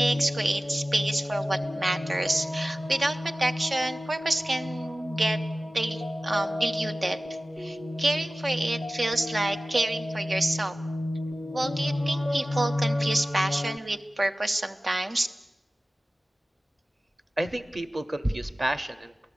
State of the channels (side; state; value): both; normal; correlation 0.96